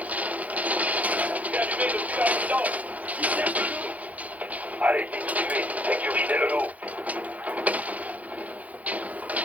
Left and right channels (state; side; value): late; left; 0.073 ms